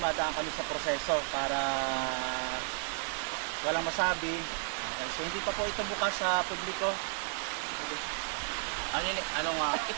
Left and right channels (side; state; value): left; silent; 56 dB below the other